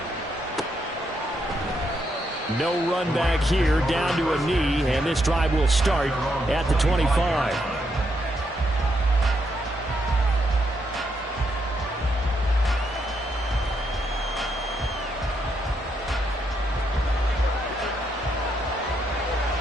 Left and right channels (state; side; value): normal; both; correlation 0.78